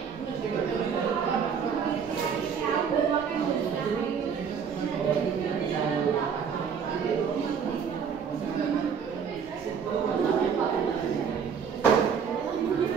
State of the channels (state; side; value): quieter; left; 6.8 dB